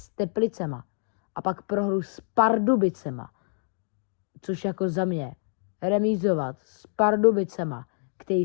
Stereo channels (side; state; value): right; silent; digital silence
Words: Teplicema a pak prohru s Pardubicema, což jako za mě remízovat s Pardubicema, který